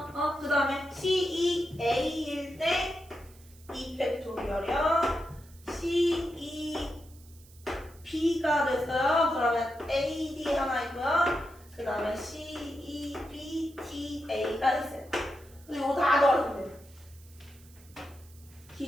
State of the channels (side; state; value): right; noise; hiss, 25 dB below the sound